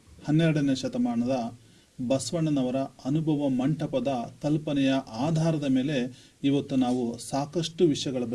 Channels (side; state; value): both; identical; correlation 1.00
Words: 12ನೇ ಶತಮಾನದ ಬಸವಣ್ಣನವರ ಅನುಭವ ಮಂಟಪದ ಕಲ್ಪನೆಯ ಆಧಾರದ ಮೇಲೆ ಇವತ್ತು ನಾವು ಸಾಕಷ್ಟು ವಿಷಯಗಳ